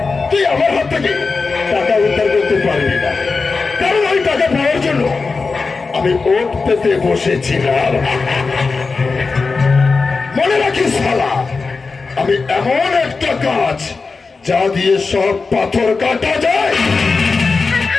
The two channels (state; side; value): quieter; right; 4.3 dB